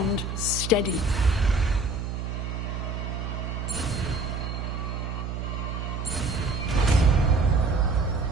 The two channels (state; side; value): noise; right; hum, 4 dB below the sound